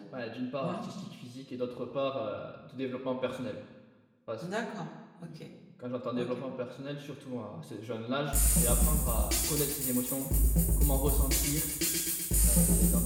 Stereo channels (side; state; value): both; identical; correlation 1.00